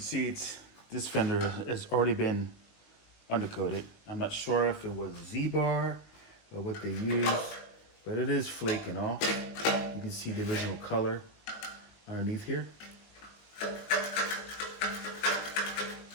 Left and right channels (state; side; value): late; right; 19 ms